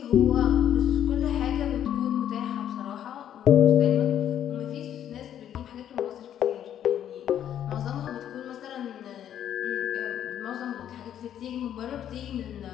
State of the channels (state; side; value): quieter; right; 10.3 dB